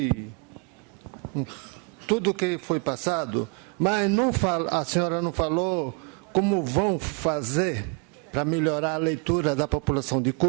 tudo que foi passado, mas a senhora não falou como vão fazer para melhorar a leitura da população de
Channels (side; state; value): left; quieter; 32.9 dB